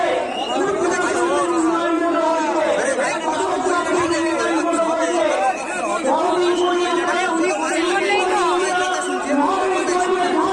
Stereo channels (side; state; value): both; identical; correlation 1.00